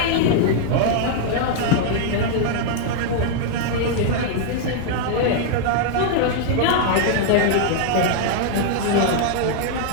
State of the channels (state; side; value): different; both; correlation 0.00